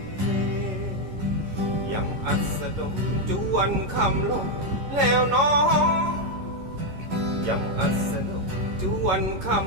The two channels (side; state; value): left; late; 11 ms